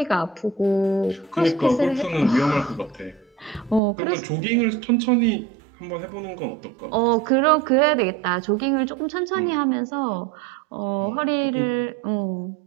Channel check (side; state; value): left; drops out; at 3.8 s